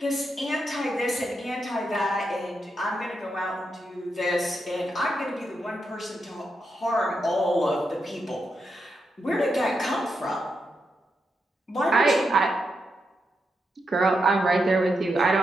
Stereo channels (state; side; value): normal; both; correlation 0.84